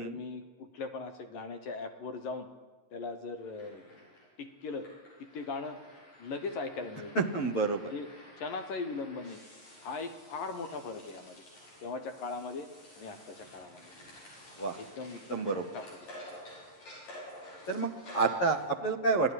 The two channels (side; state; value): right; late; 11 ms